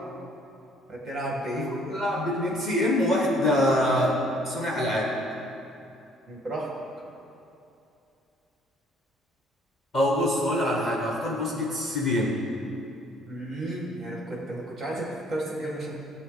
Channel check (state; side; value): normal; both; correlation 0.60